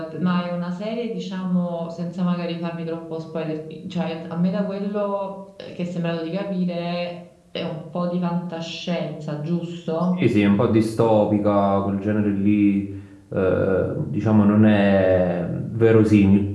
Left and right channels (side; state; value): both; identical; correlation 1.00